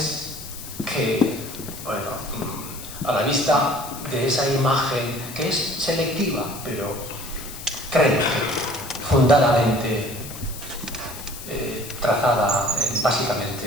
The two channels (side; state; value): left; noise; hiss, 12 dB below the sound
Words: que, bueno, a la vista de esa imagen, que es selectiva, pero creo que fundadamente trazada